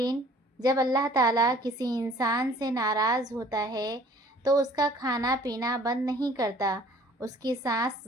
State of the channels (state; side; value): normal; both; correlation 0.53